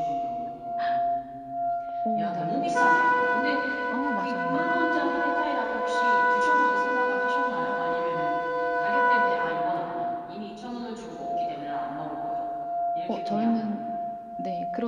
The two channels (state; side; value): identical; both; correlation 1.00